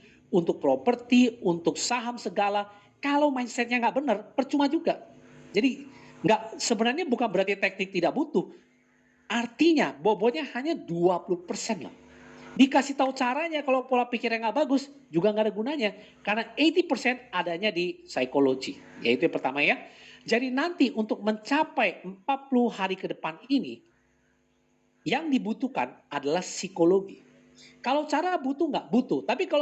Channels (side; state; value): both; identical; correlation 1.00